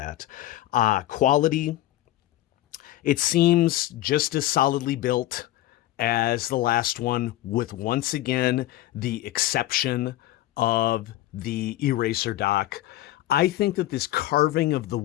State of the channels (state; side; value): quieter; right; 15.2 dB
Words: Quality, it seems just as solidly built as the last one, with once again the exception of the eraser dock. I think that this carving of the